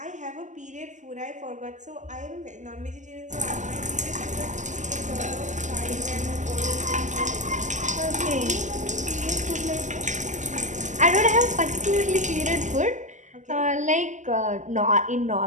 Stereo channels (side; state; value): left; late; 0.35 ms